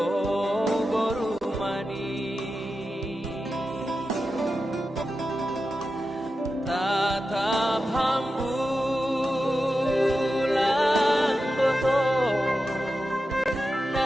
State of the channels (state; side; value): normal; both; correlation 0.91